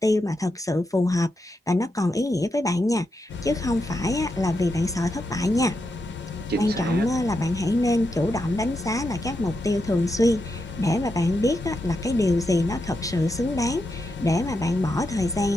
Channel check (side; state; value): both; normal; correlation 0.85